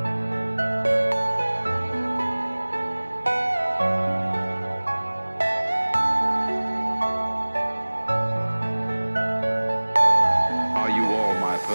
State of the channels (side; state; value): both; inverted; correlation -1.00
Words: Are you all my